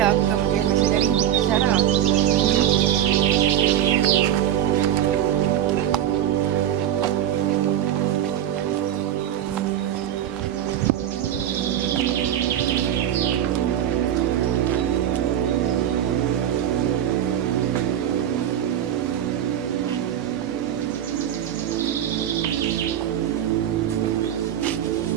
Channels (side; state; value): left; quieter; 10.9 dB